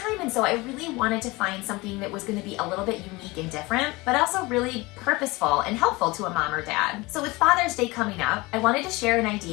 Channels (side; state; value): right; quieter; 22.9 dB